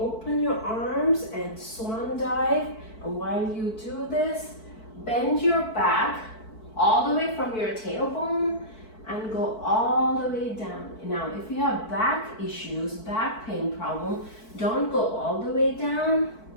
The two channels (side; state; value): right; late; 4.5 ms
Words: your arms and swan dive. And while you do this, bend your back all the way from your tailbone and go all the way down. Now, if you have back issues, back pain problem, don't go all the way down.